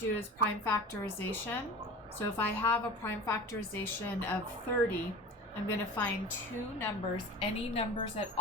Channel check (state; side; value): normal; both; correlation 0.36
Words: is prime factorization. So if I have a prime factorization of 30, I'm going to find two numbers, any numbers at